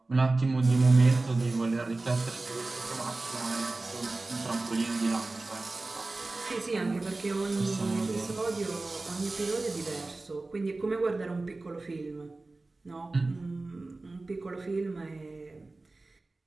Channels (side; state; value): left; quieter; 3.3 dB